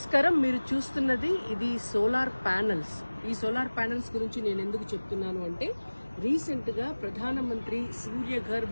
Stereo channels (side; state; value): both; inverted; correlation -1.00